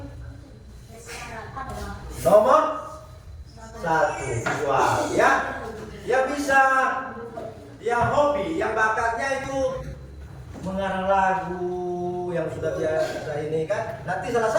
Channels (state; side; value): identical; both; correlation 1.00